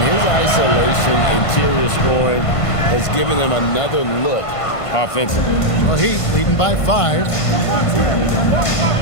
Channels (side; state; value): right; late; 1.5 ms